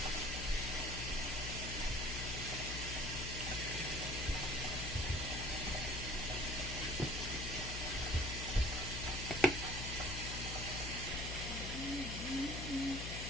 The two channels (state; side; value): noise; left; hum, 5 dB below the sound